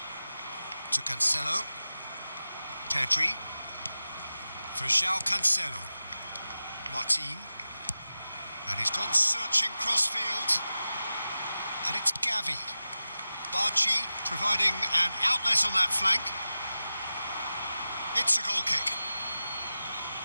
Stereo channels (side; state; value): both; inverted; correlation -0.94